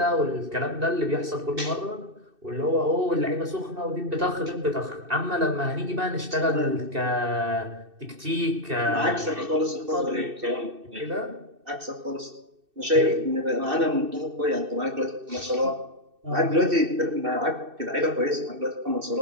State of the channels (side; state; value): left; late; 2.6 ms